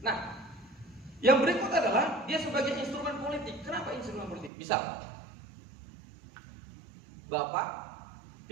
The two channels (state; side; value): drops out; left; at 4.5 s